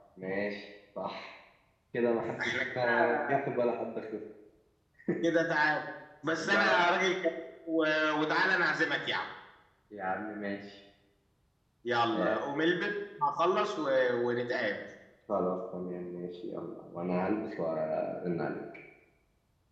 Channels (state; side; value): identical; both; correlation 1.00